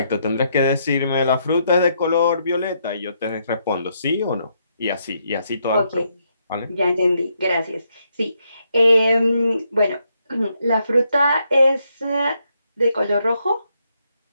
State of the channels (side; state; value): both; inverted; correlation -0.77